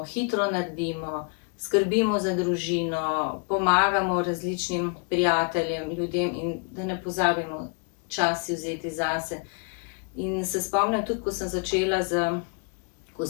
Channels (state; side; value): quieter; right; 37.4 dB